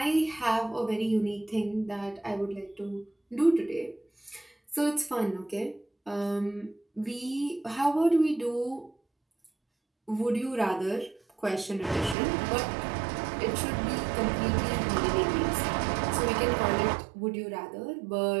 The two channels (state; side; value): drops out; left; at 12.2 s